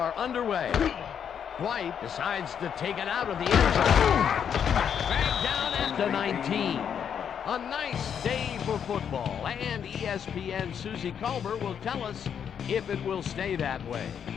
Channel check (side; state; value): right; quieter; 8.1 dB